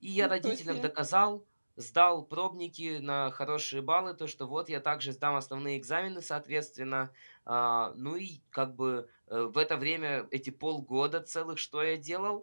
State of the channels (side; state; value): both; inverted; correlation -1.00